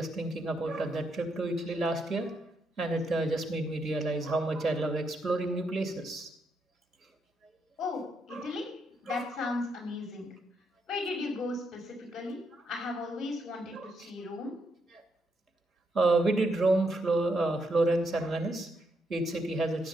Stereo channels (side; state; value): both; normal; correlation 0.78